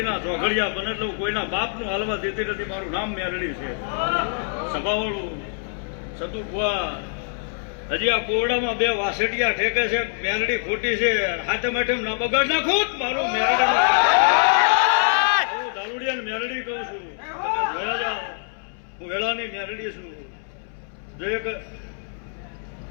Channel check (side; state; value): right; silent; 63 dB below the other